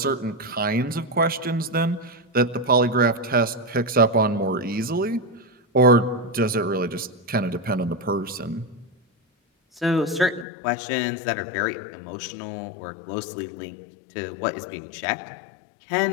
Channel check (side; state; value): right; drops out; at 10.5 s